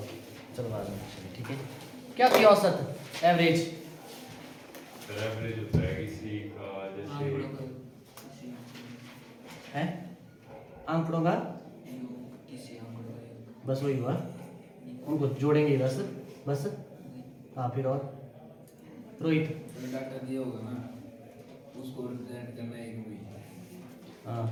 चलो बाद में ठीक है। क्या होती है औसत एवरेज? एवरेज होता है किसी का जैसे है आंकड़ों का, बस वही हुआ, उनको जोड़ेंगे बस बस। हाँ फिर और रोहित? डाटा दिया होगा ना, उसको रिप्रेजेंट करना है एक भी। हाँ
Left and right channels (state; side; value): identical; both; correlation 1.00